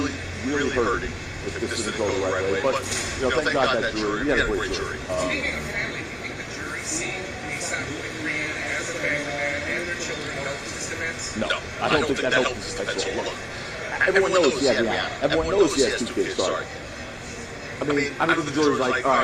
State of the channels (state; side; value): identical; both; correlation 1.00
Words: really hurting if this didn't go the right way. But, you know, thank God that jury, we had a great jury. Speaking of family, do you think the jury seen ASAP Rihanna as a family man and their children helped this event? No, I don't think that helps this at all. Look, everyone knows he has Rihanna. Everyone knows he has 2 kids, sorry. I mean, the jury's like, all